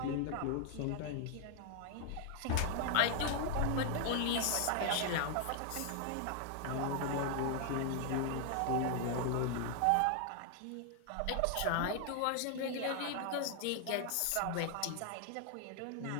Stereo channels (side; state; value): both; different; correlation 0.00